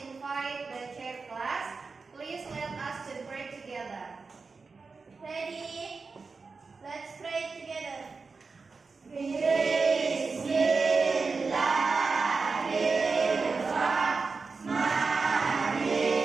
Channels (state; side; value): quieter; left; 4.5 dB